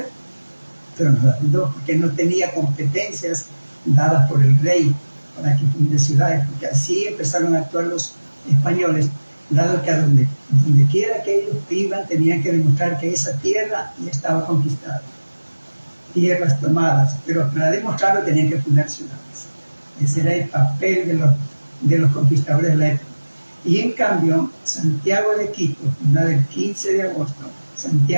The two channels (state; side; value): inverted; both; correlation -1.00